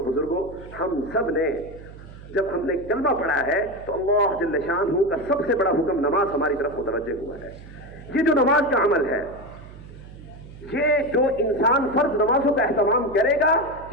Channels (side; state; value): right; noise; hum, 17 dB below the sound